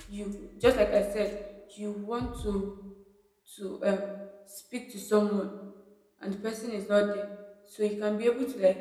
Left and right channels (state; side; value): identical; both; correlation 1.00